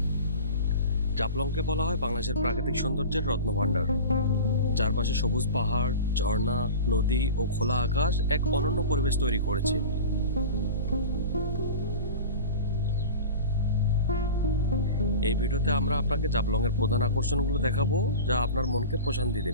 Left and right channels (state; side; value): inverted; both; correlation -0.33